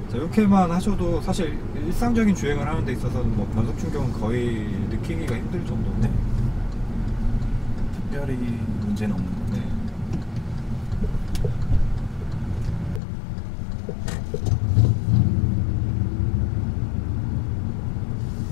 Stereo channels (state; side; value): drops out; right; at 13.0 s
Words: 자, 이렇게만 하셔도 사실 일상적인 주행을 하는 데 있어서는 뭐 변속 충격은 거의 느끼기가 힘들 정도인데 네. 특별히 문제는 없는 것 같아요. 네.